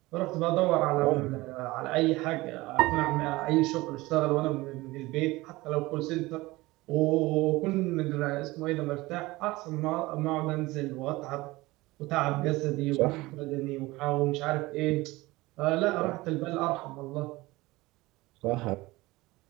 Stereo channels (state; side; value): quieter; left; 20.3 dB